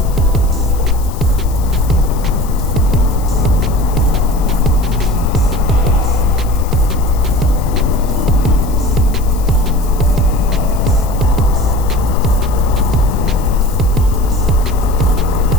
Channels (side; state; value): left; noise; hiss, 19 dB below the sound